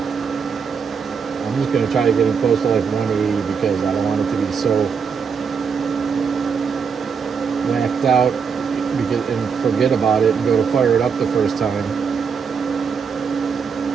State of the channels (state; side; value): quieter; left; 6.2 dB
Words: I'm just going to try to get it close to like 180 because I don't want it to be so whacked out and forget about it and go to fire it up the first time.